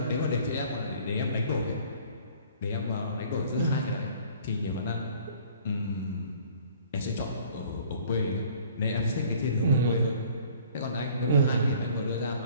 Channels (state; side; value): inverted; both; correlation -0.53